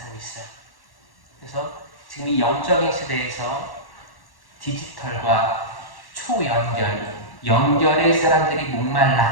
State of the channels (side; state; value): right; late; 1.1 ms